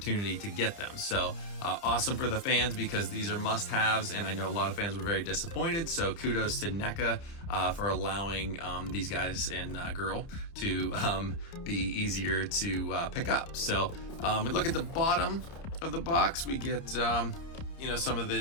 to get them. So awesome for the fans because these are must-haves, and I know a lot of fans were very disappointed. So kudos to NECA for allowing these guys and girl to be easier to pick up. So we look at the bottom of the box. We get some of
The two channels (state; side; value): late; right; 30 ms